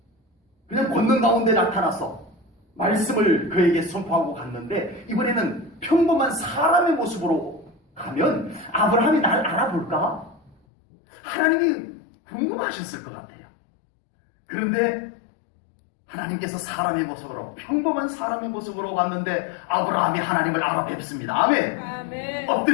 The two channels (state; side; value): drops out; right; at 10.6 s